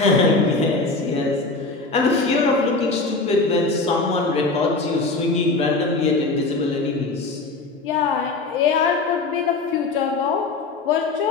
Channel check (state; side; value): quieter; right; 3.6 dB